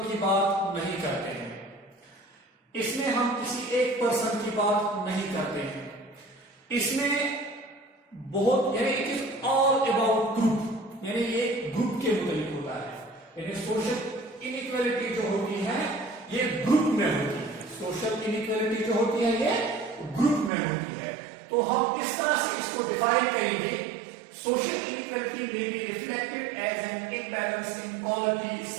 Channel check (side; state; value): left; drops out; at 20.5 s